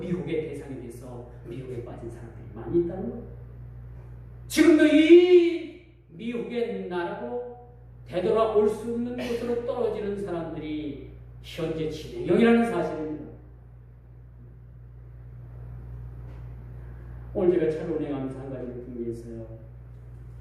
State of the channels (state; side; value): identical; both; correlation 1.00